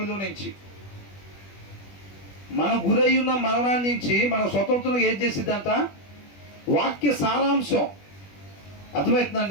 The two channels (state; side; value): late; right; 20 ms